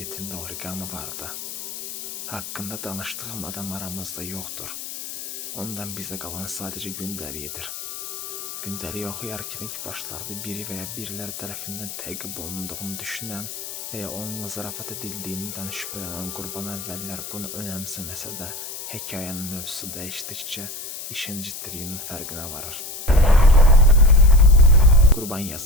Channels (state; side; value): noise; left; hiss, 9 dB below the sound